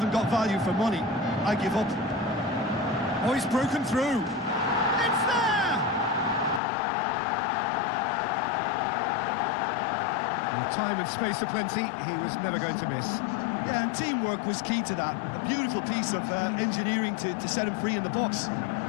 got value for money, I give up. Oh, he's broken through. It's there! With time and space aplenty, he was never going to miss. Yeah, and teamwork was key to that. A beautiful piece of engineering to set him free in the box.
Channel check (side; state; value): right; drops out; at 6.6 s